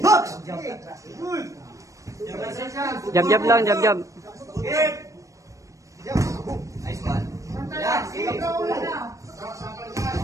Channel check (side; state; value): left; late; 0.16 ms